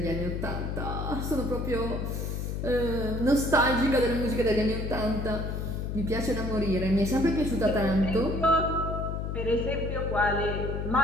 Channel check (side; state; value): left; noise; hum, 3 dB below the sound